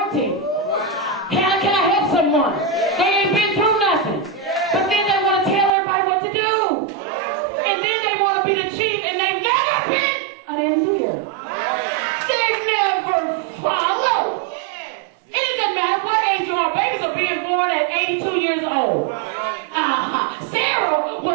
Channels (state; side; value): drops out; left; at 5.7 s